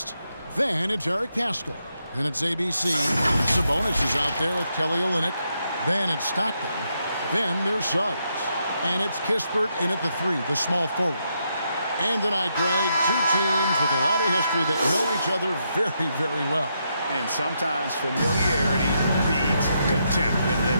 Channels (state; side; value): inverted; both; correlation -0.80